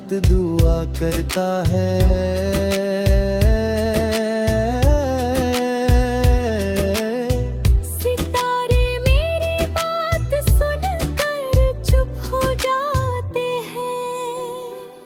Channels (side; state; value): both; identical; correlation 1.00